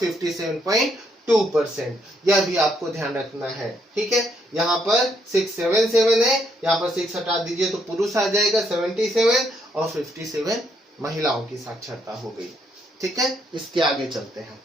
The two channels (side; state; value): both; normal; correlation 0.74